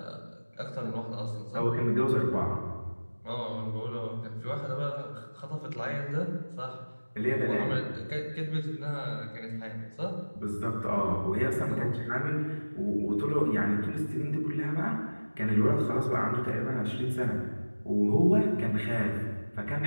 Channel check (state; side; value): inverted; both; correlation -1.00